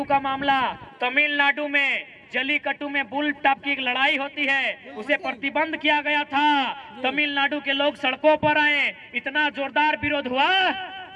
का मामला, तमिलनाडु में जलीकट्टू में बुल टॉप की एक लड़ाई होती है, उसे प्रतिबंध किया गया था। तमिलनाडु के लोग सड़कों पर आए, इतना जोरदार विरोध हुआ,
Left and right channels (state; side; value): identical; both; correlation 1.00